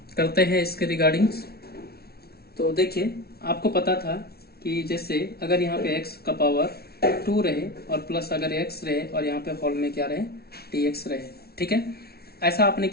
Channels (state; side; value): late; right; 0.45 ms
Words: करते हैं इसके रिगार्डिंग्स। तो देखिए, आपको पता था कि जैसे अगर यहाँ पे x का पावर 2 रहे और प्लस अगर x रहे और यहाँ पे होल में क्या रहे, dx रहे, ठीक है। ऐसा आपने